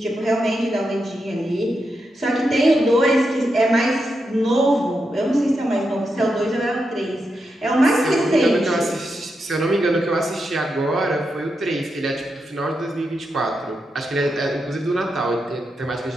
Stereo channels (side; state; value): both; normal; correlation 0.85